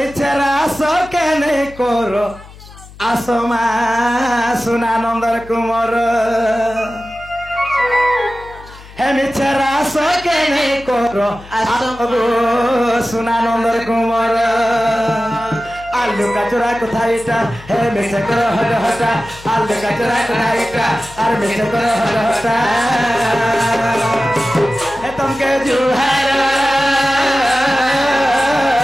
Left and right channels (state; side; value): noise; left; hum, 20 dB below the sound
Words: সকেনে করো আসমা সুনানন্দর কুমার হে মিছেরা সকেনে করো সুনানন্দর কুমার লুকা চোরা কোথায় এটা হে মিছে করো হট হটা আর লুকা চোরা কোথায় এটা আর মিছে করো হট হটা হে তুমকে জুহার